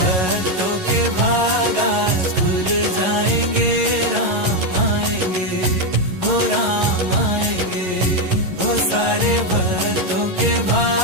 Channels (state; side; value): late; left; 11 ms